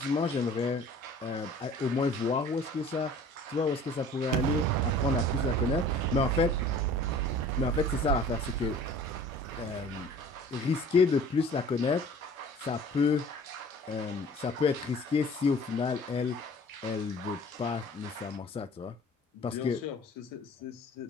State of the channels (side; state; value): both; normal; correlation 0.48